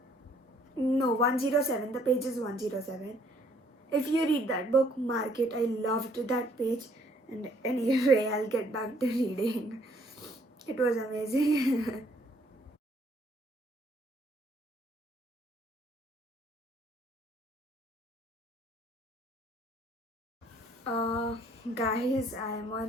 No, 107. The page is 107. If you read that book, mark it. I loved that page. And anyway, I'll get back to reading. It was amazing. uh, Guys, I'm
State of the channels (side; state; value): both; normal; correlation 0.64